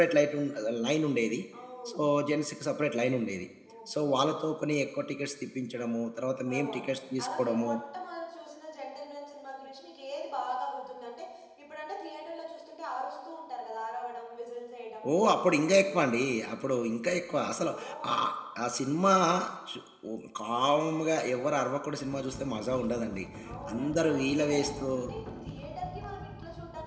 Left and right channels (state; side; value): identical; both; correlation 1.00